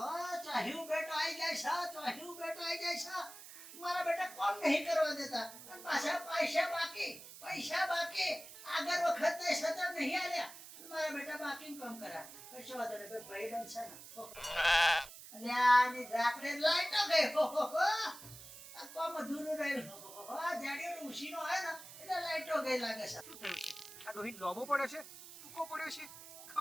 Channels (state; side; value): noise; right; hiss, 15 dB below the sound